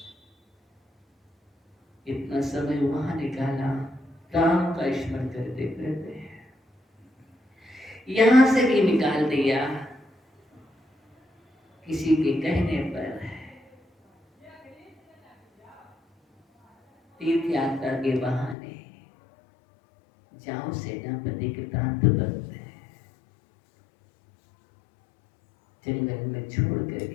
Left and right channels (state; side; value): drops out; right; at 18.6 s